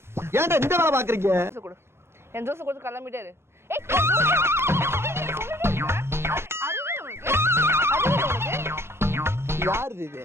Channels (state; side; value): late; left; 0.12 ms